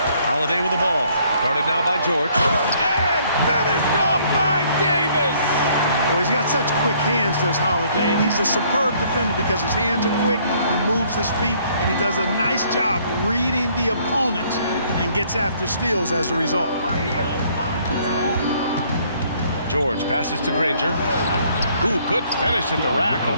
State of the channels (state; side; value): inverted; both; correlation -0.63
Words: Holiday with the ball. Guarded now by George. And finished off by Davis. Well, he's got such quick hands, does Holiday, and he's a superb defender because his hands are quick, he moves his feet, and he does a nice job reading the opponents and gets after steals as a result. George passes to Granger. Ooh, good finish at the rack